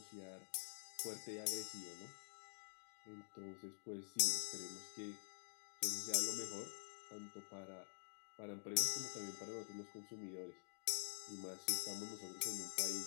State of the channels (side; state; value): right; silent; digital silence